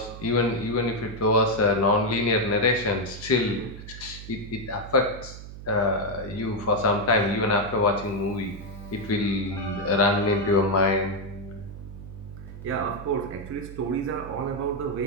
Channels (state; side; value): noise; right; hum, 13 dB below the sound